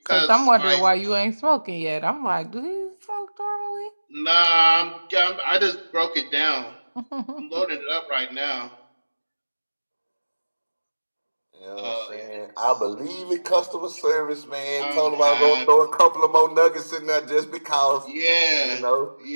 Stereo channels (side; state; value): both; inverted; correlation -1.00